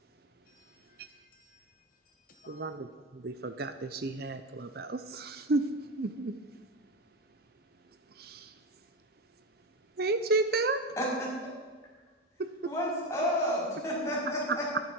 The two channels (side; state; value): both; normal; correlation 0.17